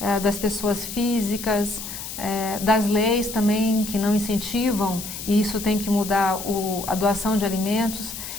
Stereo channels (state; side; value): noise; left; hiss, 9 dB below the sound